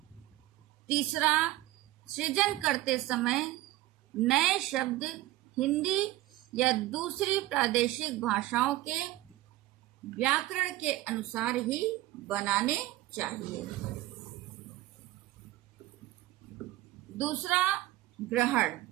तीसरा, सृजन करते समय नए शब्द हिंदी या दूसरी प्रादेशिक भाषाओं के व्याकरण के अनुसार ही बनाने चाहिए। दूसरा, ग्रहण।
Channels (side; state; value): left; quieter; 16.7 dB